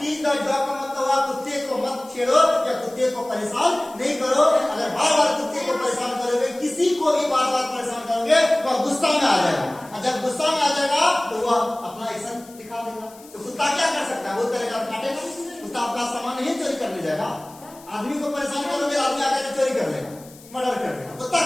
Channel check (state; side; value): noise; left; hiss, 22 dB below the sound